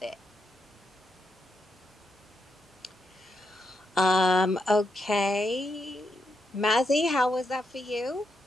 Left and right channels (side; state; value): both; normal; correlation 0.82